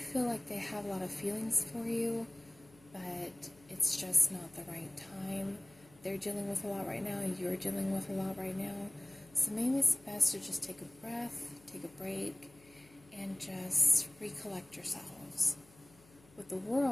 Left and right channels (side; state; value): left; noise; hum, 26 dB below the sound